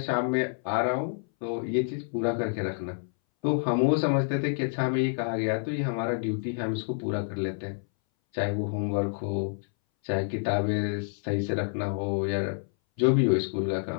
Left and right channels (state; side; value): silent; right; 59 dB below the other